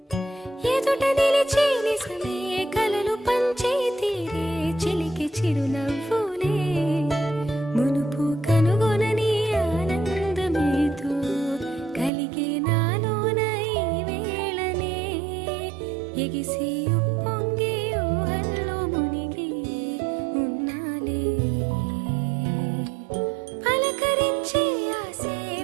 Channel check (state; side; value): drops out; left; at 12.1 s